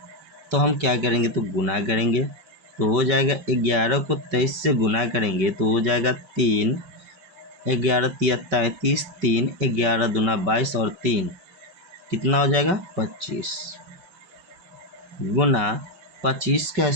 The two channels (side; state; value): left; late; 5.2 ms